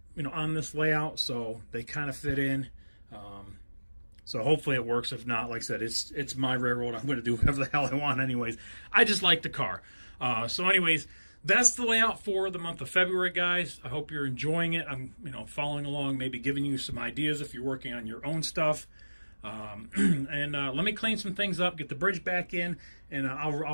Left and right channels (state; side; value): inverted; both; correlation -1.00